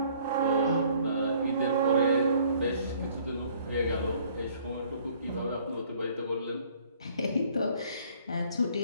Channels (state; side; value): inverted; both; correlation -0.58